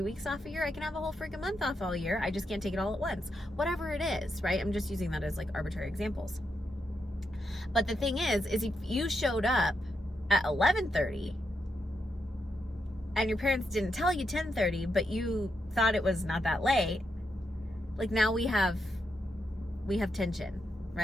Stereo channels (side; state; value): both; normal; correlation 0.83